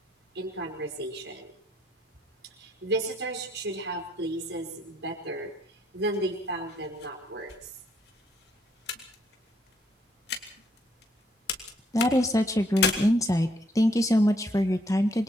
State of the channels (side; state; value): both; normal; correlation 0.70